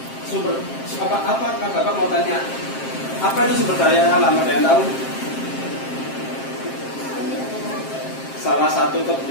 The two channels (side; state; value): right; late; 7.5 ms